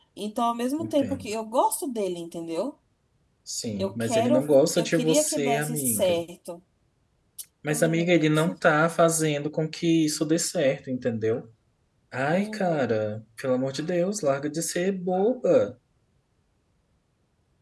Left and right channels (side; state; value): both; identical; correlation 1.00